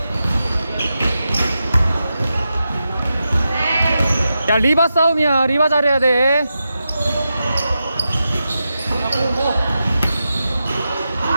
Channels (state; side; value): inverted; both; correlation -0.90